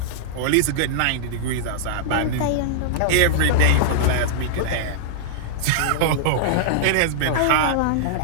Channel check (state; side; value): different; both; correlation -0.02